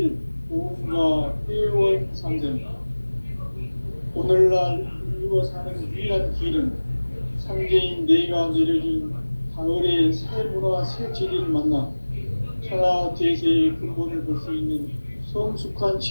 보험과 회원 상생. 오늘날 인류가 사는 유일한 길은 상제인 내가 내려준 가을의 새 문화 새 진리를 만나 천하 대세의 근본을 볼 수 있는 성숙한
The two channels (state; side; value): inverted; both; correlation -1.00